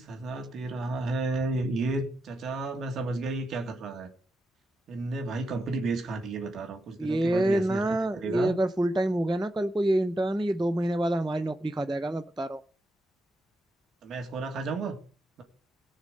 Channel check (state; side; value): normal; both; correlation 0.85